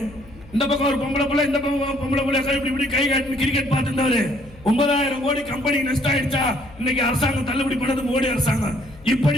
இந்த பக்கம் ஒரு பொம்பளை புள்ள, இந்த பக்கம் பொம்பளை புள்ள இப்படி கை காட்டி கிரிக்கெட் பார்த்துருந்தாரு. 9,000 கோடி கம்பெனி நஷ்டம் ஆயிடுச்சா? இன்னைக்கு அரசாங்கம் தள்ளுபடி பண்ணது மோடி அரசாங்கம். இப்படி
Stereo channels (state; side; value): noise; left; hum, 22 dB below the sound